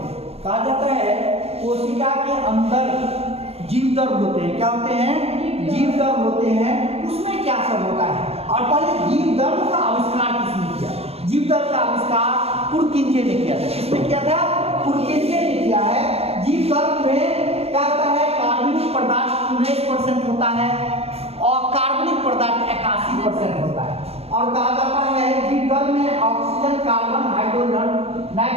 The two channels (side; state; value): left; late; 0.29 ms